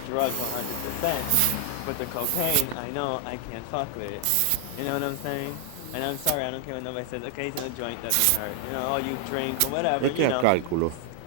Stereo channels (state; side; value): different; both; correlation 0.00